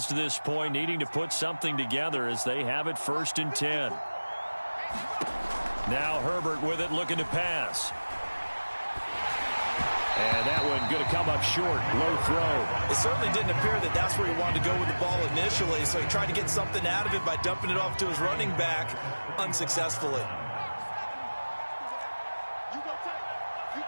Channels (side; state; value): both; inverted; correlation -1.00